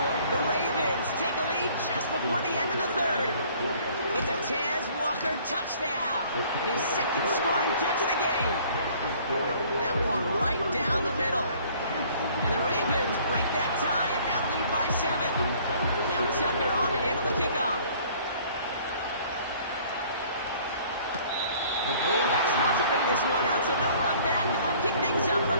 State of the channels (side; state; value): both; inverted; correlation -0.55